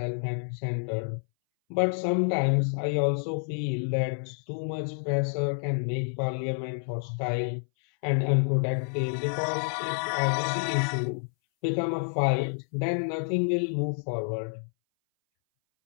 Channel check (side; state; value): right; silent; 59 dB below the other